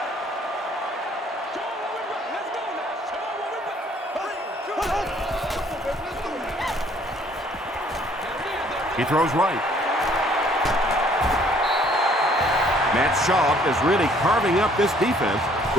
He throws right. Matt Schaub is really carving up this defense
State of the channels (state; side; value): normal; both; correlation 0.60